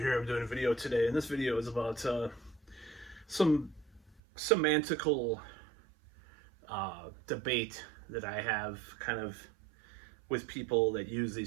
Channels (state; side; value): drops out; left; at 4.2 s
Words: I'm doing a video today, and this video is about some semantical debate that I have kind of with people that use